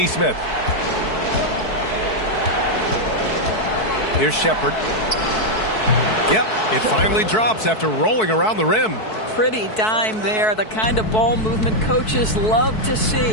Here's Shepard. Yep, it finally drops after rolling around the rim. Pretty dime there, the kind of ball movement coaches love to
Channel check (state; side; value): late; right; 4.6 ms